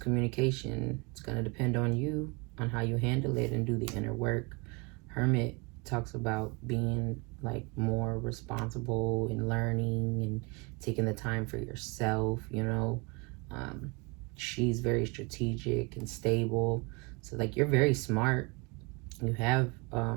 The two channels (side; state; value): left; quieter; 28.4 dB